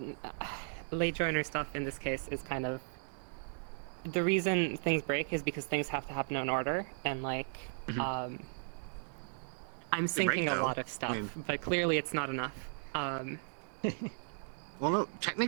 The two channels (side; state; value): left; silent; 54 dB below the other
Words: late joiner stuff in this case is kind of the reason things break is because things have to happen in order, and like Mhm. I'm They break, syncing a though. lot of stuff, mean- but clearly it's not enough. Well, no,